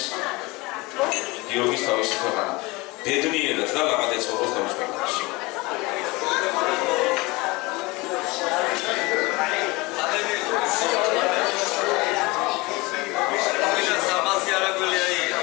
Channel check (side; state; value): right; quieter; 23.6 dB